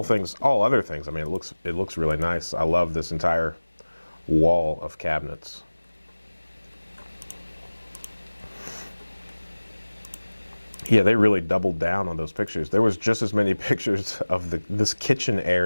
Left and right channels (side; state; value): both; inverted; correlation -1.00